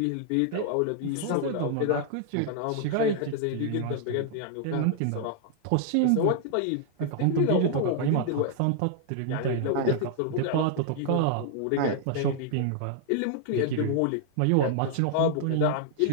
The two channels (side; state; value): both; different; correlation -0.01